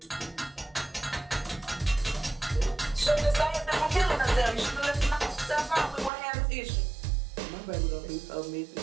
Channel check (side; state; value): left; drops out; at 6.1 s